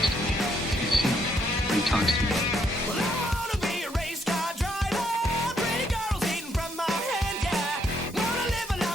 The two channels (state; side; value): normal; both; correlation 0.72